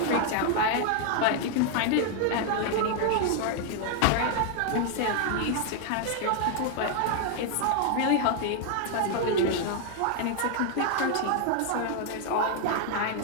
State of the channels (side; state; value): both; different; correlation 0.00